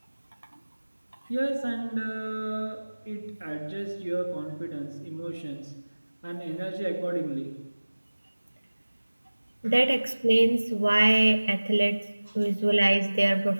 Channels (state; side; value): inverted; both; correlation -1.00